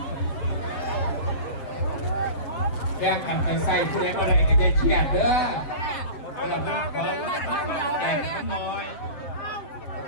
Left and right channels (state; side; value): late; right; 7.5 ms